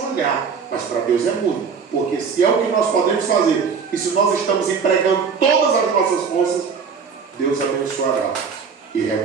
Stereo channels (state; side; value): quieter; left; 5.9 dB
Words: olhar, mas para Deus é muito, porque se é o que nós podemos fazer, e se nós estamos empregando todas as nossas forças, Deus abençoará e